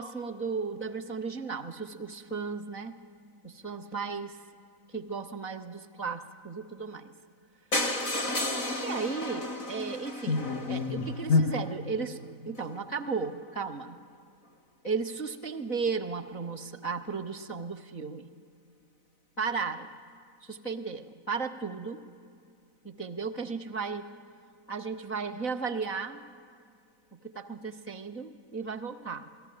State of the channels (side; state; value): right; late; 4.0 ms